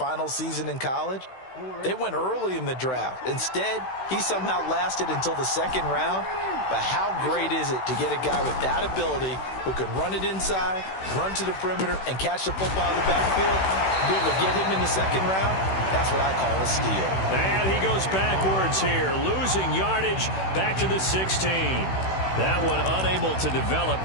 season in college, they went early in the draft. Instead, he somehow lasted until the 2nd round. But how great is it to get a guy with that ability who can run it inside, run to the perimeter, and catch the football in the backfield? Be able to get him in the 2nd round, that's what I call a steal. And he goes backwards here, losing yardage back to the 16. That one unable to develop,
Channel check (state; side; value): late; right; 16 ms